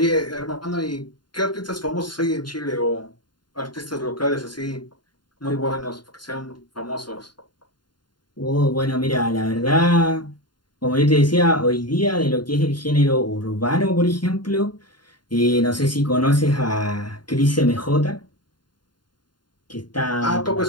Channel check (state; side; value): late; right; 0.71 ms